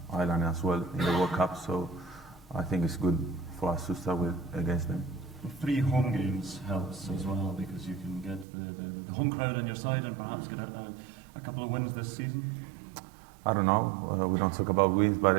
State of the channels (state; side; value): drops out; left; at 8.5 s